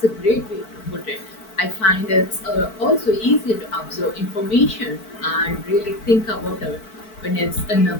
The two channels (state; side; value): late; right; 4.5 ms